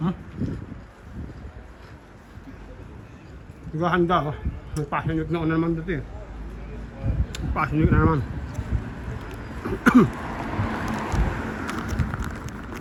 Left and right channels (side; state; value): both; identical; correlation 1.00